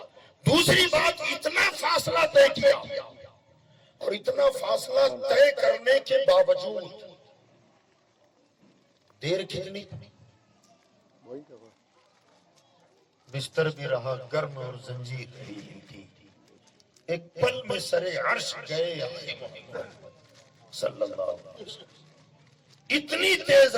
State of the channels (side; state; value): both; identical; correlation 1.00